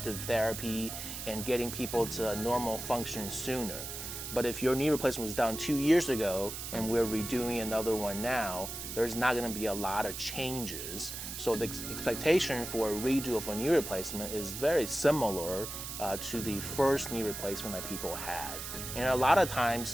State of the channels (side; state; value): right; noise; hiss, 7 dB below the sound